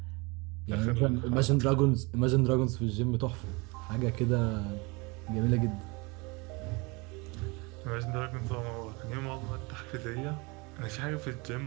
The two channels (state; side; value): quieter; left; 27.1 dB